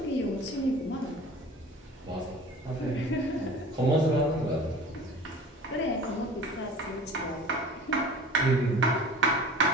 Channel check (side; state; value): both; normal; correlation 0.42